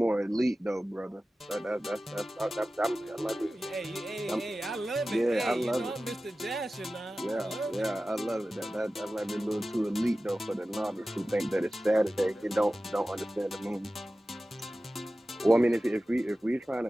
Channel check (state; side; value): normal; both; correlation 0.95